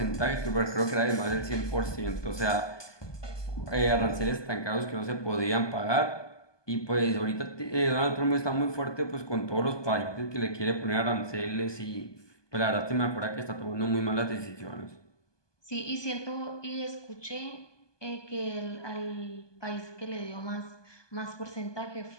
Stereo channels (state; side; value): late; right; 1.2 ms